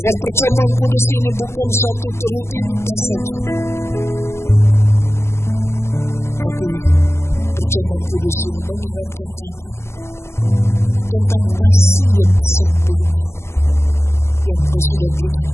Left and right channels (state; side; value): late; right; 0.13 ms